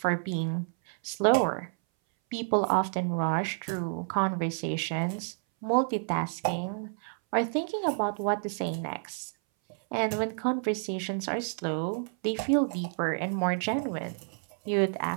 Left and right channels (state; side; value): silent; left; 58 dB below the other